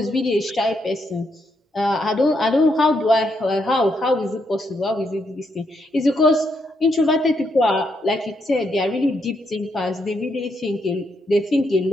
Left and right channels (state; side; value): normal; both; correlation 0.78